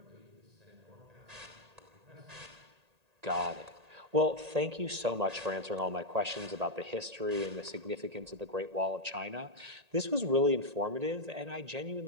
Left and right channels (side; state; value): left; late; 1.8 ms